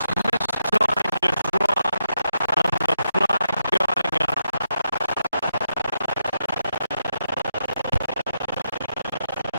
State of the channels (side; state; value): both; inverted; correlation -0.83